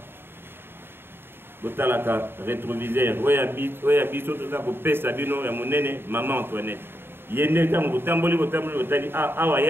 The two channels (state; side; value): late; left; 0.11 ms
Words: ayez rétroviseur. Oya biso tout ça coupé sa bino ya monene maman Antoinette. Yende tam botamboli otali awa